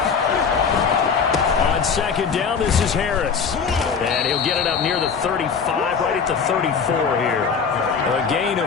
On On second down, this is Harris. And he'll get it up near the 35, right at the 34 here. A gain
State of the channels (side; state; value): right; quieter; 6.0 dB